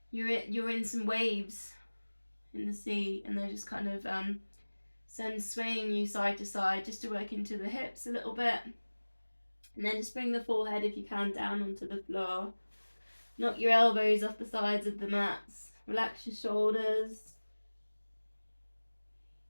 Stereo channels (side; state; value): both; inverted; correlation -1.00